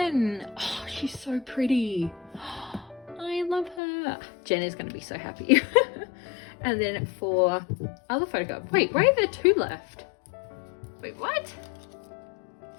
Oh, she's so pretty. I love her. Jen is going to be so happy. And then for other photo card. Wait, why are there 2 left? Wait, what?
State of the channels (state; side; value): drops out; right; at 3.8 s